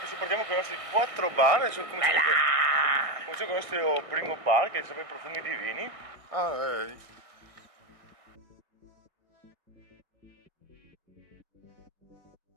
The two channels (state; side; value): late; left; 1.6 ms